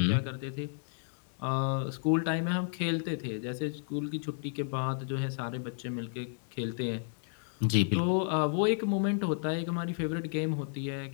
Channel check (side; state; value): right; silent; digital silence